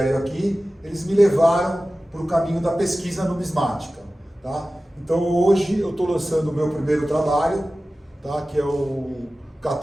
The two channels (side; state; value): both; normal; correlation 0.96